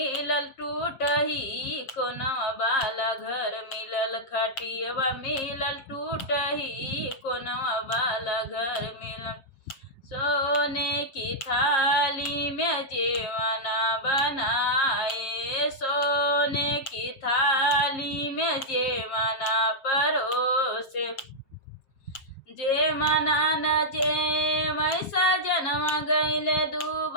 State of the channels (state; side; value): late; right; 7.4 ms